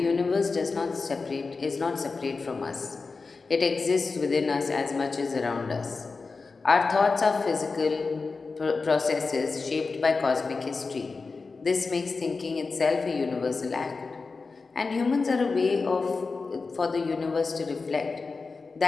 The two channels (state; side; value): quieter; right; 4.2 dB